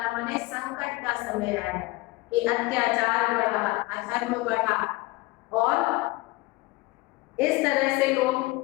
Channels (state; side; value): quieter; right; 22.0 dB